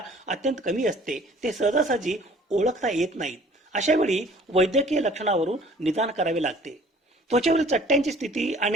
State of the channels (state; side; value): normal; both; correlation 0.53